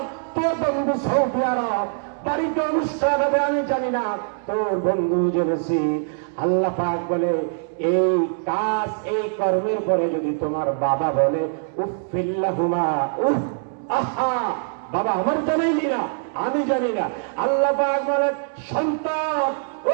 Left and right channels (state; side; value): silent; left; 63 dB below the other